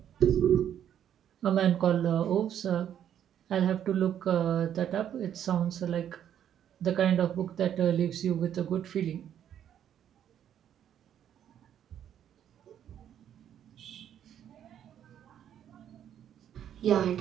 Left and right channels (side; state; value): left; quieter; 9.9 dB